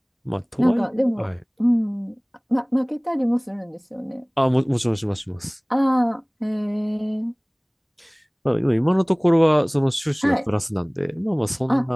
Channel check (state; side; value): identical; both; correlation 1.00